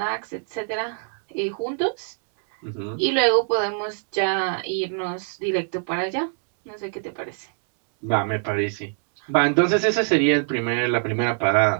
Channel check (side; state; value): left; silent; 62 dB below the other